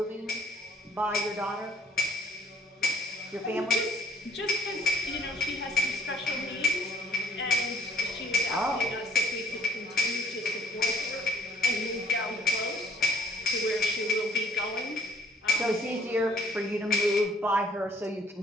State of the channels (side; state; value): both; normal; correlation 0.59